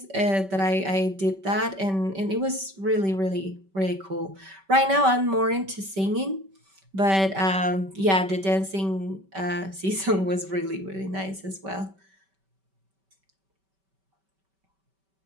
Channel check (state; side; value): late; left; 5.2 ms